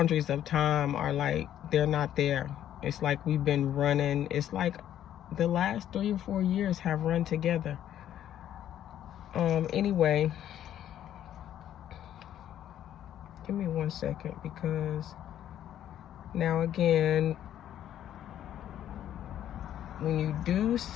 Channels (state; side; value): quieter; right; 11.1 dB